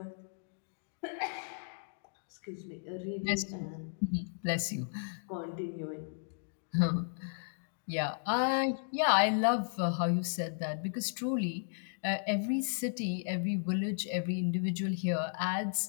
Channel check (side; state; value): right; silent; digital silence